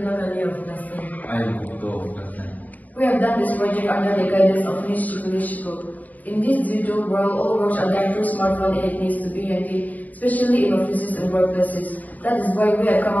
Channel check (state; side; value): late; right; 0.077 ms